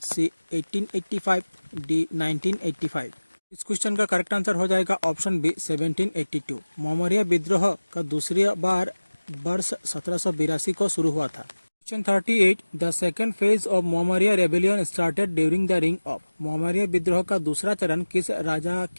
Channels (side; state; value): both; inverted; correlation -1.00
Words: C 1885, D 1985। इस क्वेश्चन का करेक्ट आंसर हो जाएगा ऑप्शन बी 1782, मोहम्मदिया विद्रोह का दूसरी बार वर्ष 1782 को शुरू हुआ था। Question 38, the second phase of Mohammadia rebellion started during the रिंग ऑफ, मोहम्मदिया विद्रोह का दूसरा चरण किस राजा